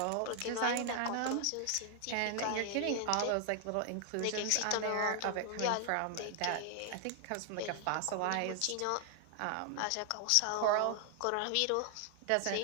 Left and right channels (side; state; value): both; different; correlation 0.00